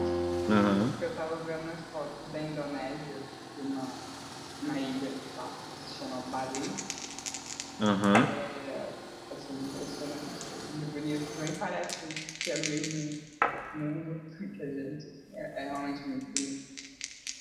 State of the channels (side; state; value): both; identical; correlation 1.00